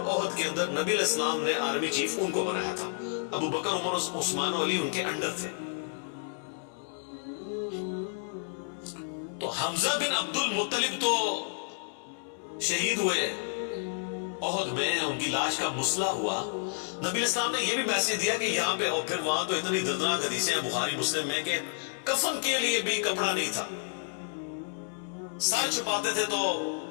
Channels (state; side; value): silent; right; digital silence